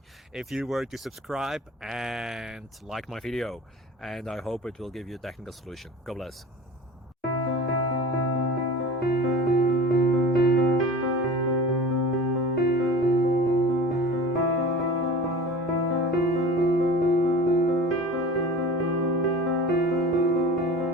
if you were to subscribe and like my video, and I hope it will give you a technical solution. God bless.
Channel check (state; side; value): normal; both; correlation 0.38